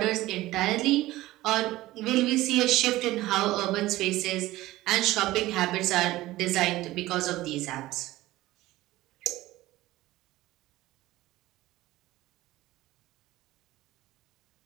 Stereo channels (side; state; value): left; quieter; 17.1 dB